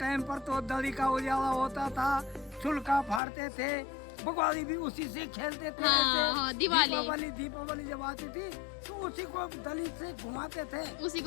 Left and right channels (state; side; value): drops out; right; at 3.2 s